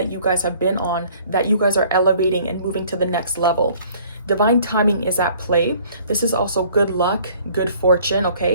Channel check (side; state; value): both; inverted; correlation -0.55